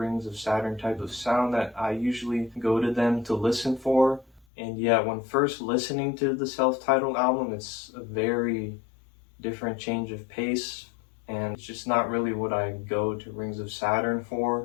of Saturn type of sound that I usually go to them to listen for. And yeah, when first listening to the self-titled album, it's a very different change of pace, and it's just not really what I go to Rings of Saturn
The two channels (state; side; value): drops out; right; at 4.5 s